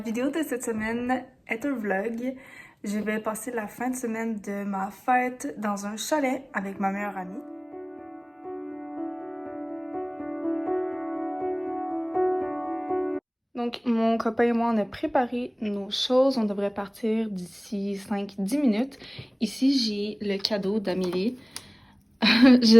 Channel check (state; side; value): identical; both; correlation 1.00